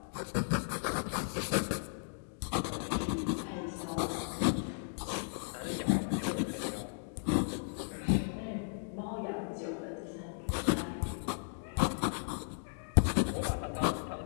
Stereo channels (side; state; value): right; silent; digital silence